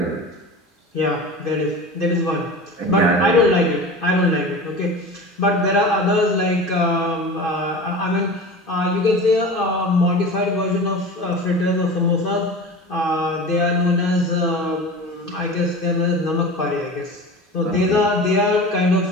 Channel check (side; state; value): both; normal; correlation 0.33